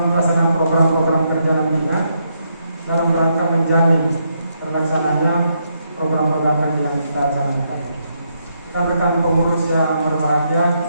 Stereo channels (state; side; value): inverted; both; correlation -0.77